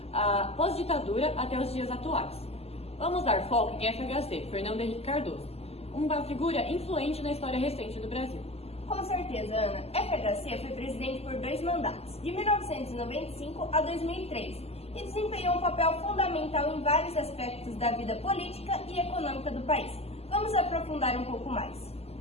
pós-ditadura até os dias atuais. Vamos dar foco em FHC, Fernando Henrique Cardoso, uma figura influente na história recente do Brasil. Com certeza, Ana. FHC foi presidente por 2 mandatos, de 1995 a 2003, e desempenhou um papel fundamental em vários aspectos da vida política e econômica do país. Vamos aprofundar um pouco mais.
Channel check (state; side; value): late; right; 0.29 ms